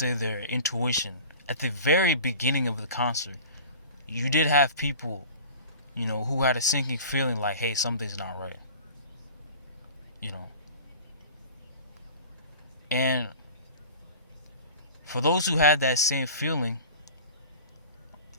their intuition, at the very beginning of the concert. You did have people, you know, who had a sinking feeling like, hey, something's not right. You know. And for those who had that same feeling,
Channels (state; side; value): inverted; both; correlation -0.39